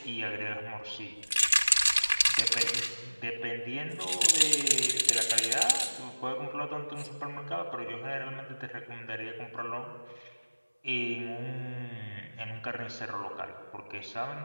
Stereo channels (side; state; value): both; inverted; correlation -1.00